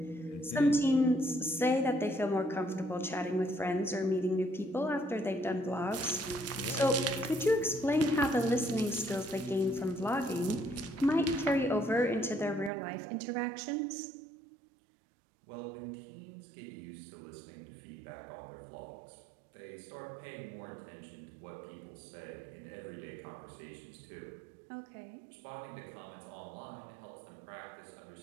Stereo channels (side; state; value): left; drops out; at 12.7 s